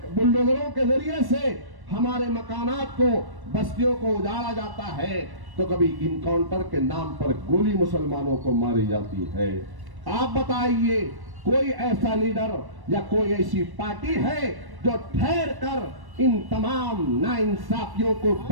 के जरिए से हमारे मकानात को, बस्तियों को उजाड़ा जाता है, तो कभी इनकाउंटर के नाम पर गोली मुसलमानों को मारी जाती है। आप बताइए, कोई ऐसा लीडर या कोई ऐसी पार्टी है जो ठहर कर इन तमाम नाइंसाफियों को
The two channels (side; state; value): left; late; 1.1 ms